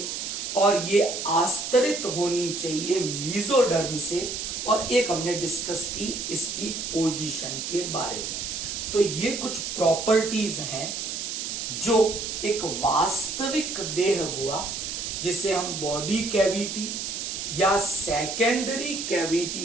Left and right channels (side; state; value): right; noise; hiss, 4 dB below the sound